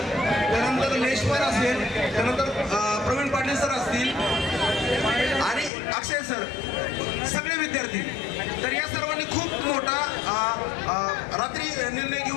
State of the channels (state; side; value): drops out; right; at 5.7 s